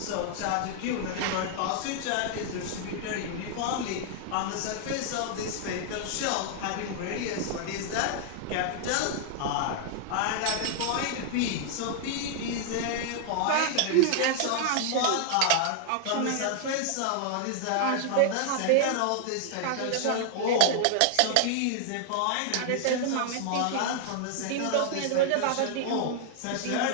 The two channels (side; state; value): both; different; correlation -0.01